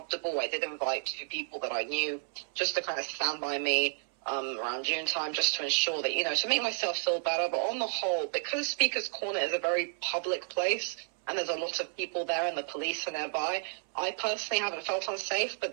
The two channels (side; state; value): left; silent; 57 dB below the other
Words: I did invite 2 people that I knew just to kind of stand by me around June time, just to ensure that, to make myself feel better. But on the whole, because Speaker's Corner is a very public place, and there's a lot of people there and the police are nearby, I personally haven't felt unsafe. But